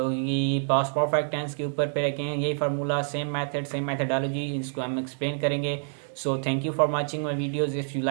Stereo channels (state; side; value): silent; left; digital silence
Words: पास्ट परफेक्ट टेंस के ऊपर पे रखें यही formula, same method, same methodology, इसको हम एक्सप्लेन करेंगे। So thank you for watching my videos. If you